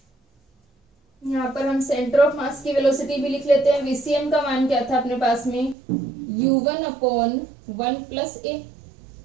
यहाँ पर हम सेंटर ऑफ मास की वेलोसिटी भी लिख लेते हैं। वीसीएम का मान क्या था अपने पास में, u1 अपॉन 1 प्लस ए।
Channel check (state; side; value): drops out; left; at 5.8 s